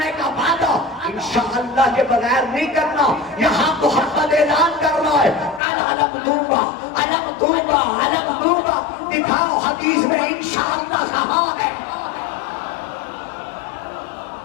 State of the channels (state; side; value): drops out; right; at 5.6 s